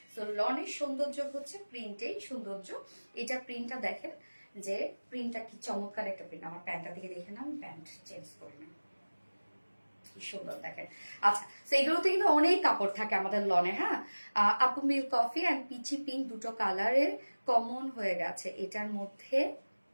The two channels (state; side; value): inverted; both; correlation -1.00